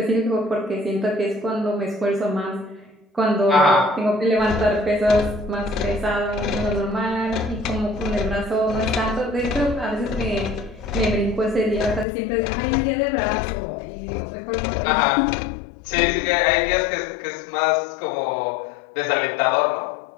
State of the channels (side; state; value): right; drops out; at 12.1 s